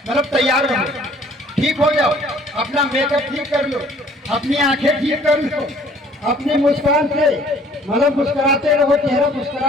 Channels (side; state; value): both; normal; correlation 0.56